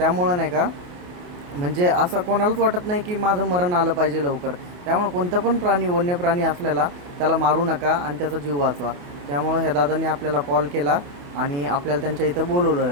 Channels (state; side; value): late; left; 28 ms